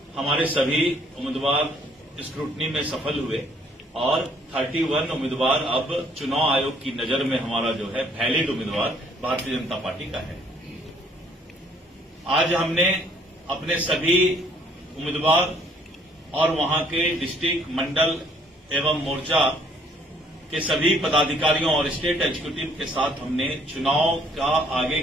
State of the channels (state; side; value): normal; both; correlation 0.62